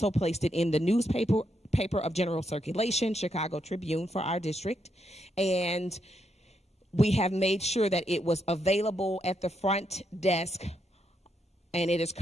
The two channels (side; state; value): both; normal; correlation 0.79